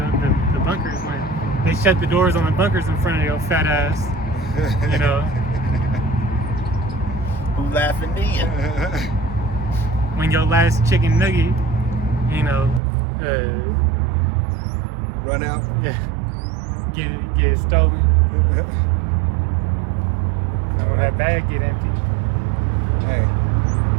the bunkers when they shut the doors on the bunkers in front of your fat ass. Who laughing then? When your last chicken nugget, Run out. yeah, get stolen. And when that bag get empty, Hey.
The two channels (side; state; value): left; drops out; at 12.8 s